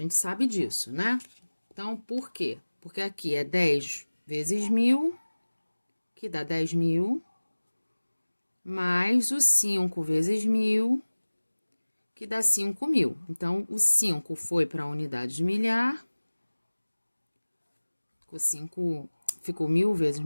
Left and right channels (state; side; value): inverted; both; correlation -1.00